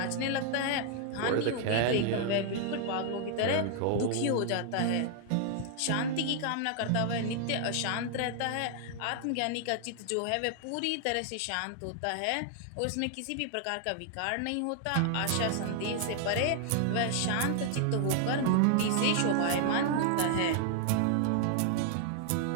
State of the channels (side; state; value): both; different; correlation 0.00